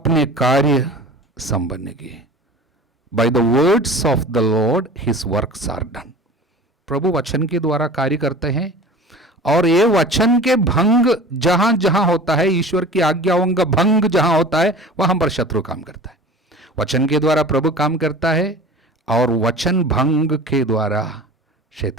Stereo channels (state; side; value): normal; both; correlation 0.39